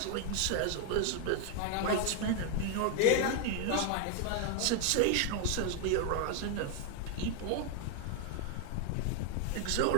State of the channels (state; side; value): different; both; correlation 0.01